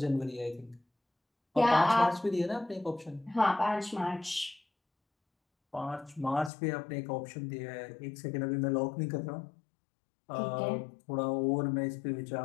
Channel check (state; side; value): drops out; right; at 6.5 s